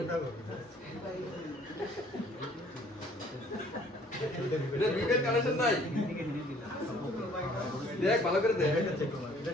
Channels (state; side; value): normal; both; correlation 0.57